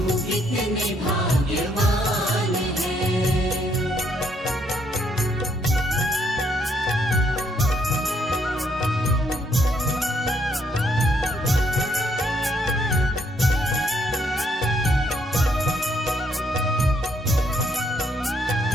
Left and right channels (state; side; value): normal; both; correlation 0.71